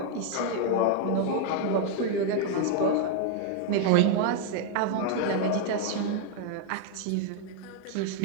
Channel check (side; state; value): both; different; correlation 0.00